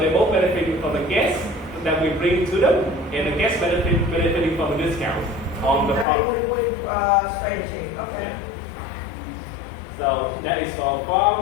both benefiting from the guests that we bring to them, and the guests benefiting from the discounts on the product. Strategy. Okay. Yeah. So that is for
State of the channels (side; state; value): right; drops out; at 6.1 s